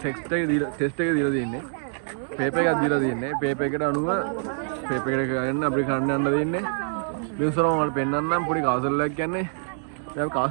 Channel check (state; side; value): silent; left; digital silence